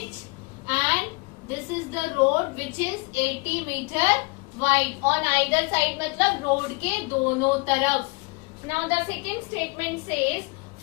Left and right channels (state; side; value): quieter; right; 28.9 dB